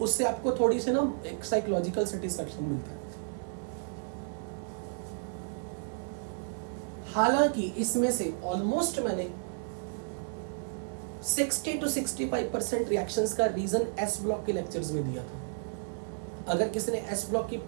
उससे आपको थोड़ी सी ना एक साइकोलॉजिकल सेटिस्फैक्शन मिलता है। हालांकि इसमें से ऑलमोस्ट मैंने 60 to 65% रिएक्शंस का रीजन एस ब्लॉक के लेक्चर्स में दिया था। अगर किसी ने एस ब्लॉक की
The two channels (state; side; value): silent; left; digital silence